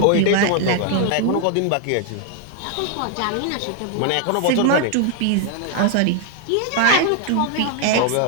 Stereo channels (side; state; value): both; different; correlation 0.00